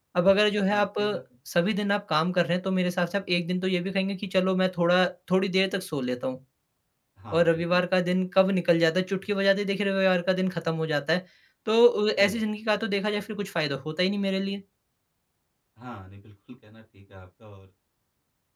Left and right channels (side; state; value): both; identical; correlation 1.00